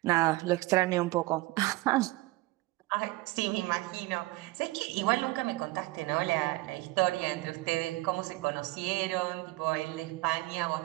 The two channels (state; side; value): quieter; left; 20.4 dB